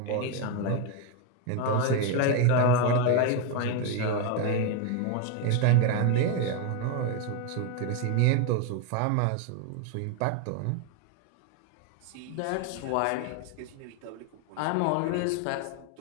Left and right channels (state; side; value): different; both; correlation 0.02